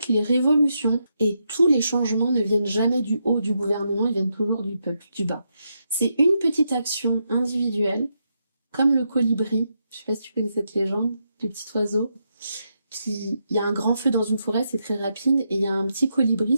les révolutions et tous les changements ne viennent jamais du haut du gouvernement, ils viennent toujours du peuple, du bas. C'est une petite action individuelle, comme le colibri, je sais pas si tu connais cette légende, du petit oiseau, il y a un grand feu dans une forêt, c'est très rapide, et il y a un petit colibri,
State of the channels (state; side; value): inverted; both; correlation -0.82